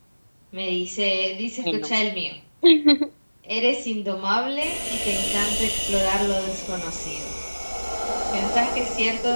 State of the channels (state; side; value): inverted; both; correlation -1.00